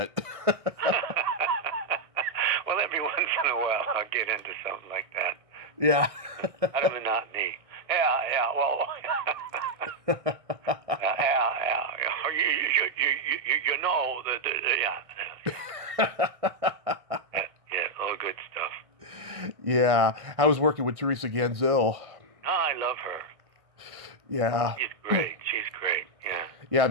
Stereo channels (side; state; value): left; late; 1.6 ms